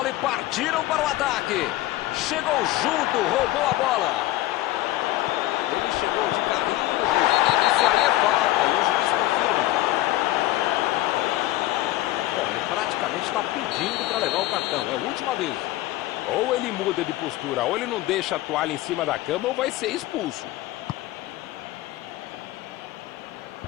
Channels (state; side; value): quieter; right; 16.5 dB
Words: e partiram para o ataque. Chegou junto, roubou a bola. Ele chegou de carrinho. Isso aí é falta e o juiz confirma. Bom, ele praticamente está pedindo para levar o cartão. É o último aviso. Ou ele muda de postura, ou ele não deixa a toalha em cima da cama, ou vai ser expulso.